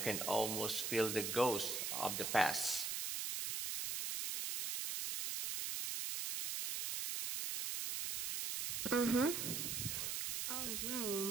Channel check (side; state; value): right; noise; hiss, 1 dB below the sound